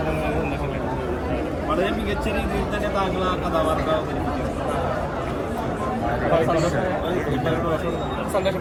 സന്തോഷമുണ്ട്. വളരെ മികച്ച രീതിയിൽ തന്നെ താങ്കൾ ആ കഥാപാത്രം അവതരിപ്പിക്കും. സന്തോഷം.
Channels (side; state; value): both; identical; correlation 1.00